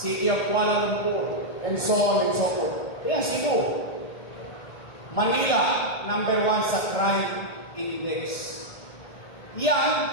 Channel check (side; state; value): right; late; 1.6 ms